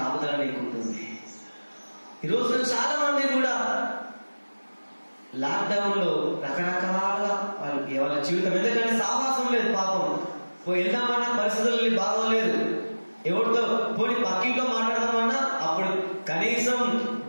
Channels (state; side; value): inverted; both; correlation -1.00